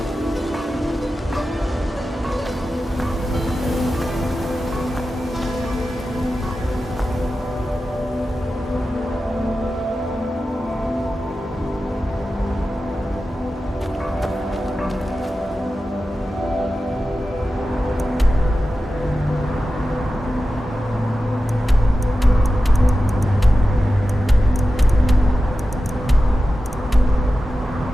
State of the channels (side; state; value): both; normal; correlation 0.93